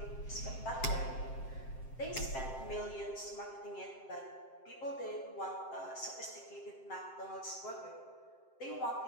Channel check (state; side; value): late; right; 7.6 ms